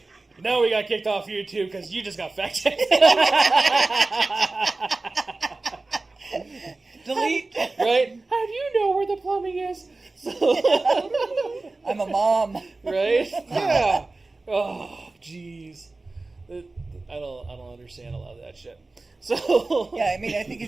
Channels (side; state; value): left; quieter; 3.3 dB